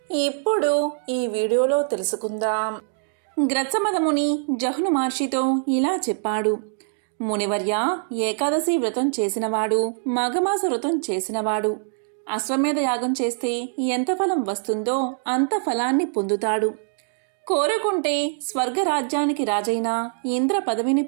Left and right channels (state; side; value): silent; left; 63 dB below the other